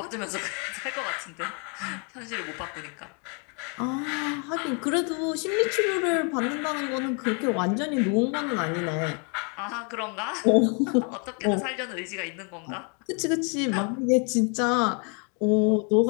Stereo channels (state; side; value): quieter; right; 37.3 dB